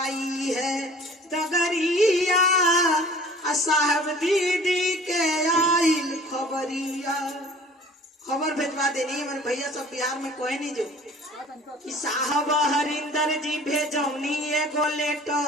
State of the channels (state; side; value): normal; both; correlation 0.48